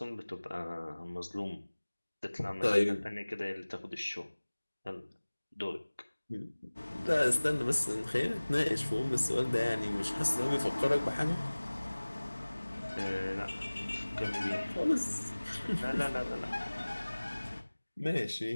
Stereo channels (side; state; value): both; inverted; correlation -1.00